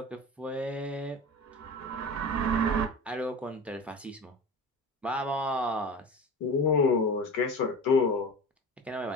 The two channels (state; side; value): normal; both; correlation 0.33